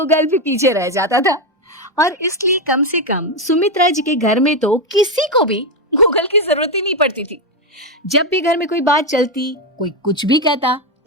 भी पीछे रह जाता था। और इसलिए कम से कम सुमित्रा जी के घर में तो किसी को भी गूगल की जरूरत ही नहीं पड़ती थी। जब भी घर में कोई बात चलती, कोई कुछ भी कहता,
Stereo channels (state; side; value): normal; both; correlation 0.07